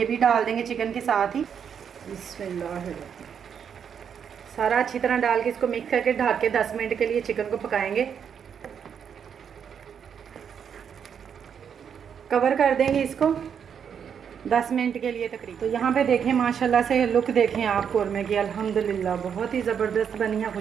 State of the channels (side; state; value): left; quieter; 7.6 dB